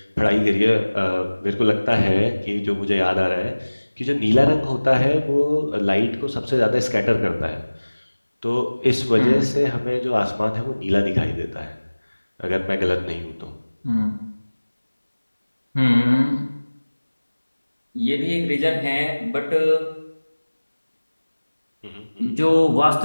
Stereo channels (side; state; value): both; inverted; correlation -1.00